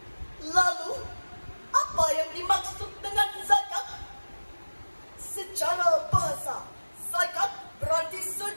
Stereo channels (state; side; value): inverted; both; correlation -1.00